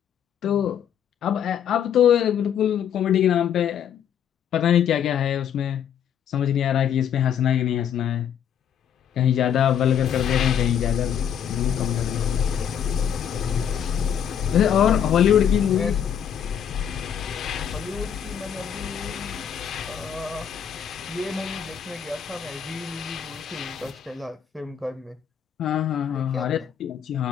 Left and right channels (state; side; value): quieter; right; 8.7 dB